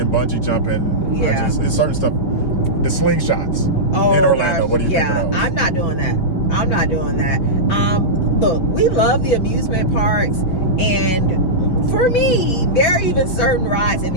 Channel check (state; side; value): late; right; 5.7 ms